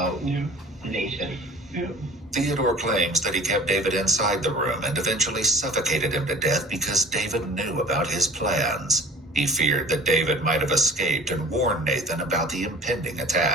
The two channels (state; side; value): normal; both; correlation 0.45